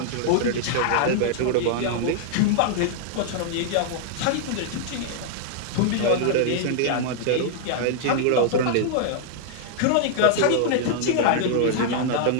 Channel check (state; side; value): different; both; correlation -0.01